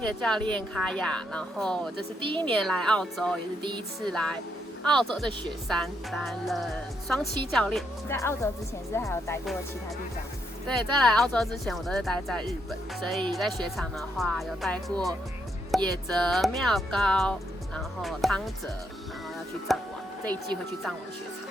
教练卡雅。然后这是第一年来澳洲，也是第一次来澳洲的雪山担任双栖教练。在澳洲之前是还有待过其他地方？对，在来澳洲之前我都是待在日本，所以在雪场的话有待过野泽、妙高，然后汤泽，然后要去藏王，这一季会去藏王雪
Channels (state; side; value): normal; both; correlation 0.78